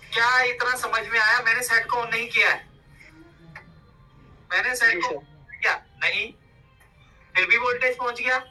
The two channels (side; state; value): both; identical; correlation 1.00